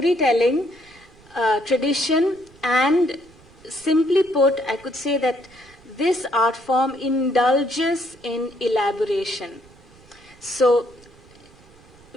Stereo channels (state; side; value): noise; right; rumble, 26 dB below the sound